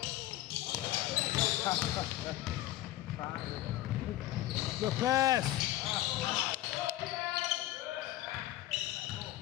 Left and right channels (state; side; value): quieter; right; 15.1 dB